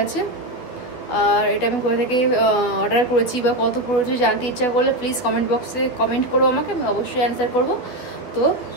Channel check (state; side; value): late; right; 12 ms